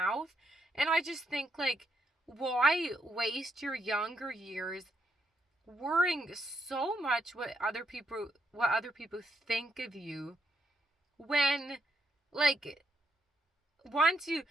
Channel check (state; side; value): normal; both; correlation 0.77